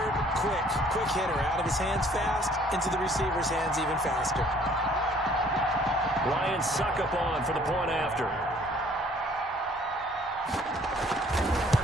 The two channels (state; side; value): normal; both; correlation 0.58